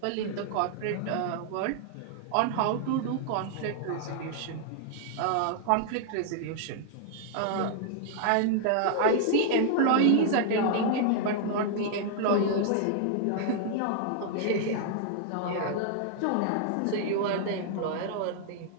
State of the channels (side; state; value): both; different; correlation -0.01